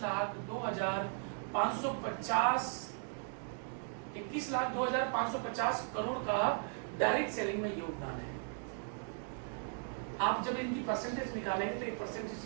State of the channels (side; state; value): left; silent; 53 dB below the other